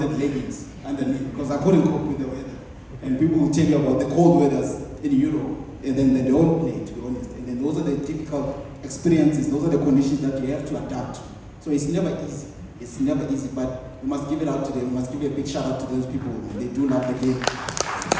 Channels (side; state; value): both; identical; correlation 1.00